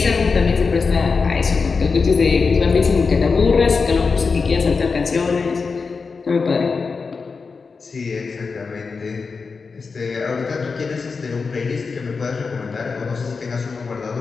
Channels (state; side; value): quieter; right; 4.8 dB